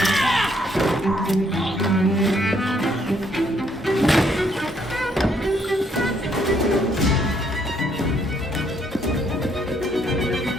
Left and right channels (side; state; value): both; normal; correlation 0.70